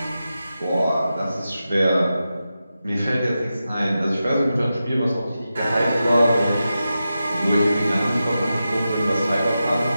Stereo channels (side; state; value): both; inverted; correlation -0.91